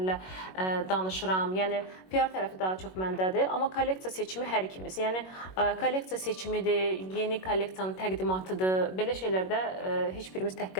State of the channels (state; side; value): late; right; 21 ms